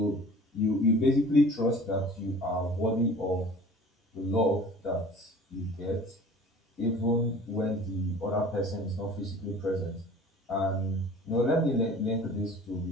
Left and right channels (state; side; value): normal; both; correlation 0.44